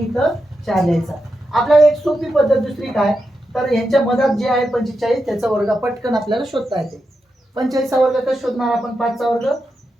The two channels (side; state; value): both; normal; correlation 0.87